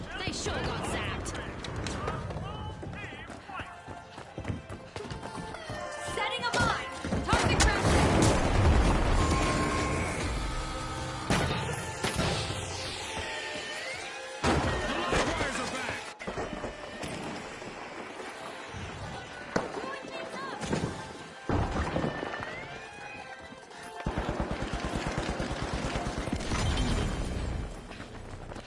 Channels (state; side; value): identical; both; correlation 1.00